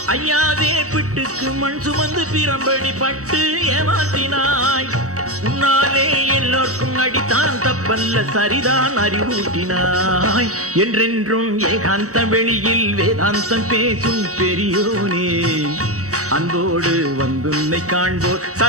ஐயாவே பிட்டுக்கு மண் சுமந்து பிரம்படி பட்டு ஏமாற்றினாய். உன்னாலே எல்லோர்க்கும் அடித்தான் தப்பல்ல சரிதான் அறிவூட்டினாய். என்றென்றும் ஏகாந்த வெளியில் வேதாந்தம் பேசும் பெரியோனே, அன்போடு வந்துன்னை காண்போர்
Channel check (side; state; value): left; late; 0.65 ms